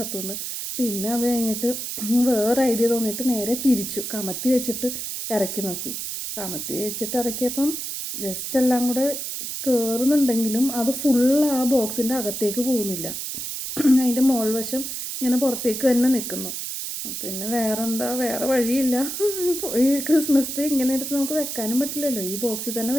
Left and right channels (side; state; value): right; noise; hiss, 5 dB below the sound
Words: പിന്നെ അത് കഴിഞ്ഞിട്ട് വേറെ ഐഡിയ തോന്നിയിട്ട് നേരെ തിരിച്ചു കമത്തി വെച്ചിട്ട് ഇറക്കി നോക്കി. കമത്തി വെച്ചിട്ട് ഇറക്കിയപ്പം ജസ്റ്റ് എല്ലാം കൂടെ കയറുന്നുണ്ടെങ്കിലും അത് ഫുള്ള് ആ ബോക്സിൻ്റെ അകത്തേക്ക് പോകുന്നില്ല. അതിൻ്റെ മോൾ വശം ഇങ്ങനെ പുറത്തേക്ക് തന്നെ നിൽക്കുന്നു. പിന്നെ വേറെ വഴിയില്ല. ഈ ക്രിസ്മസ് ട്രീ ഇങ്ങനെ എടുത്ത് നമുക്ക് വെക്കാനും പറ്റില്ലല്ലോ. ഈ ബോക്സിൽ തന്നെ